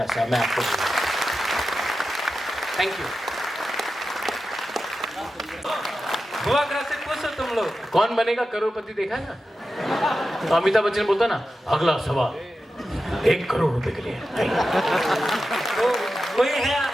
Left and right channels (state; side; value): normal; both; correlation 0.92